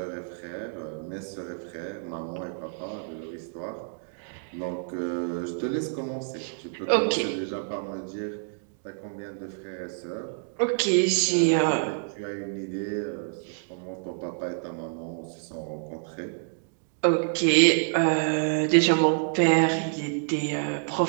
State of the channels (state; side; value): silent; left; digital silence